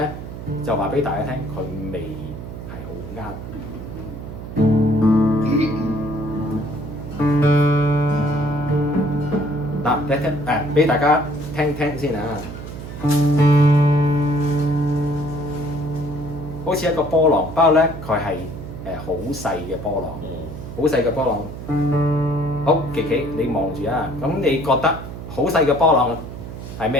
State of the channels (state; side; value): noise; right; hum, 10 dB below the sound